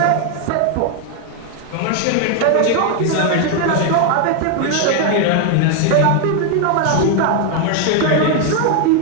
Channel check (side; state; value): both; different; correlation 0.01